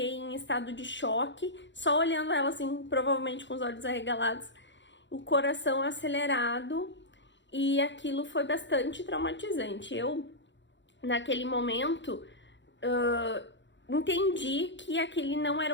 em estado de choque, só olhando ela assim, provavelmente com os olhos arregalados, o coração acelerado, e aquilo foi bastante traumatizante. Eu, naquele momento, entendi que aquele não era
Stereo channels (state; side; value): late; right; 0.53 ms